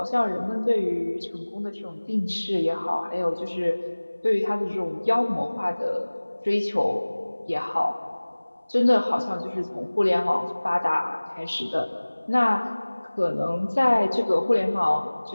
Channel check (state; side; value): inverted; both; correlation -1.00